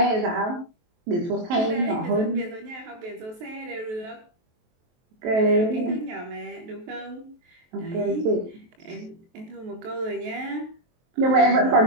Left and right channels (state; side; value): late; left; 23 ms